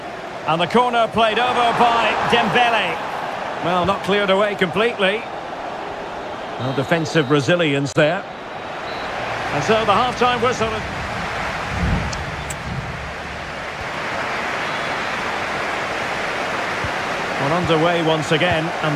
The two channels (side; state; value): both; identical; correlation 1.00